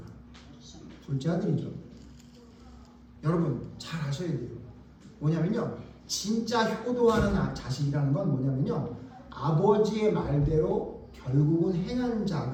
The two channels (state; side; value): identical; both; correlation 1.00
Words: 둘째 아들이죠. 여러분 잘 아셔야 돼요. 뭐냐면요, 진짜 효도하는 자식이라는 건 뭐냐면요, 아버지의 말대로 결국은 행한